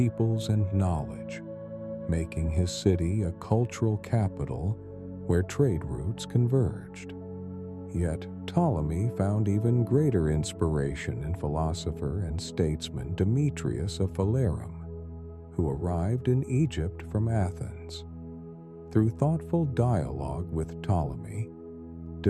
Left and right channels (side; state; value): both; identical; correlation 1.00